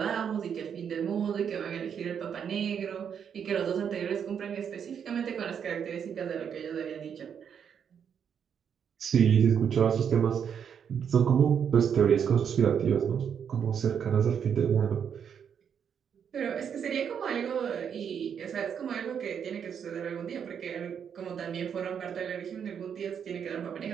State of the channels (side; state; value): left; quieter; 7.8 dB